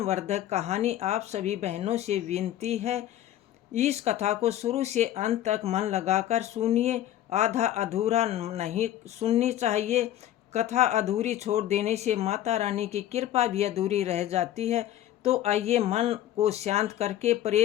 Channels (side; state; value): right; quieter; 12.4 dB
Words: कहानी। आप सभी बहनों से विनती है, इस कथा को शुरू से अंत तक मन लगाकर सुनिए। आधा अधूरा नहीं सुननी चाहिए। कथा अधूरी छोड़ देने से माता रानी की कृपा भी अधूरी रह जाती है। तो आइए मन को शांत करके